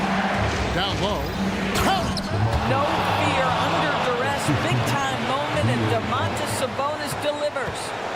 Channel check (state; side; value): identical; both; correlation 1.00